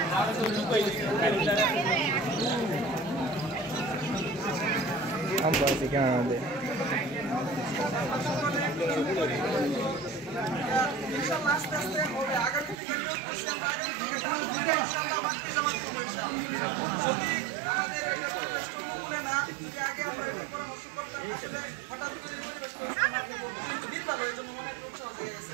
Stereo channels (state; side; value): drops out; left; at 12.8 s